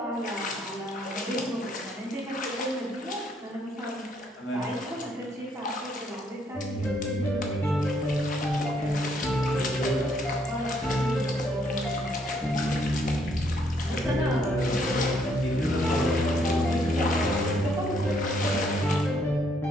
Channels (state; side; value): normal; both; correlation 0.70